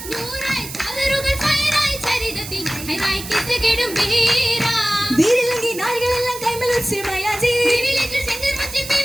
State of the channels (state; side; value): noise; right; hiss, 11 dB below the sound